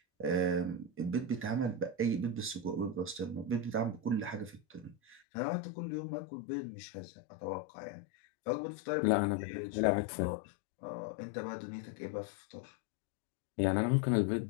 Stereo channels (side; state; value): right; drops out; at 5.2 s